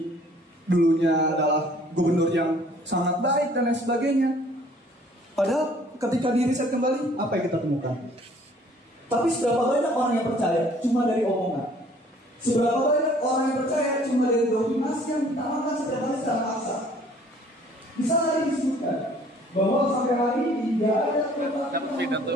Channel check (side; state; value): both; normal; correlation 0.56